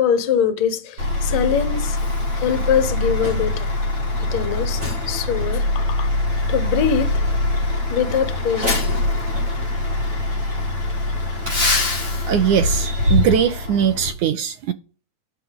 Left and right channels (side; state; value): left; late; 8.9 ms